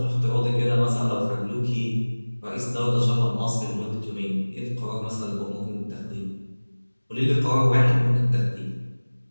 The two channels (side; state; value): both; inverted; correlation -1.00